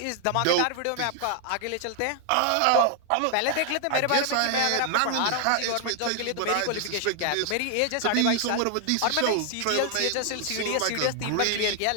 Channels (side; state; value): both; different; correlation 0.00